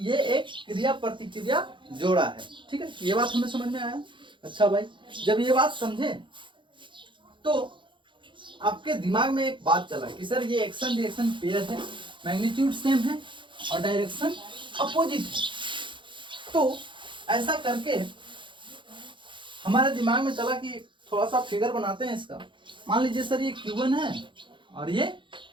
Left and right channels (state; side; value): late; left; 0.23 ms